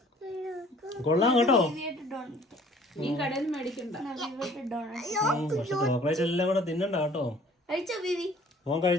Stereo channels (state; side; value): normal; both; correlation 0.54